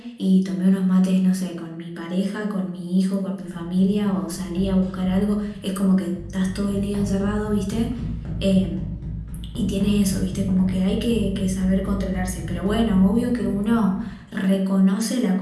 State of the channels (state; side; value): identical; both; correlation 1.00